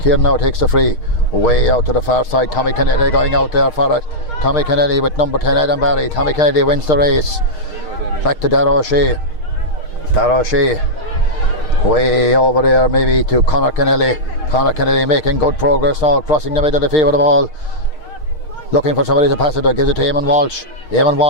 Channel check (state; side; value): late; right; 6.5 ms